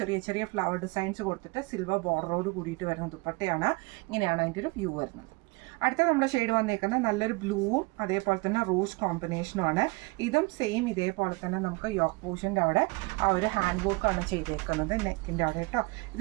ചെറിയ ചെറിയ ഫ്ലവർ ഡിസൈൻസ് കൊടുത്തിട്ട് സിൽവർ ബോർഡറോട് കൂടിയിട്ട് വരുന്ന ദുപ്പട്ടയാണ്. ഇങ്ങനെയാണ് അതിൻ്റെ ഒരു വ്യൂ വരുന്നത്. അടുത്ത നമ്മുടെ ഷെയ്ഡ് വന്നേക്കുന്നത് നല്ലൊരു ബ്ലൂവും അതേപോലെ തന്നെ റോസ് കോമ്പിനേഷനുമാണ്. ഇതും സെയിം ഇതേപോലെ തന്നെ നമുക്ക് യോക്ക് പോർഷൻ്റെ അവിടെ ആ ഒരു ഹാൻഡ് വർക്കാണ് ചെയ്തേക്കുന്നത് നെക്കിൻ്റെ അവിടെ കേട്ടോ.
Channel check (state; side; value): quieter; left; 26.2 dB